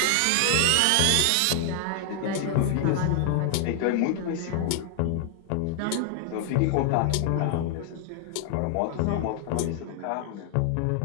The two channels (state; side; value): different; both; correlation 0.00